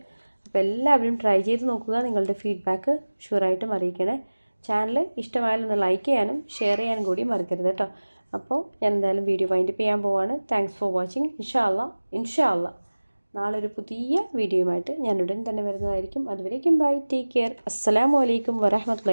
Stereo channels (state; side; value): inverted; both; correlation -1.00